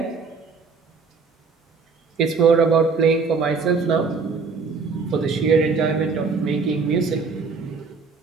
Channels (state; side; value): quieter; left; 4.8 dB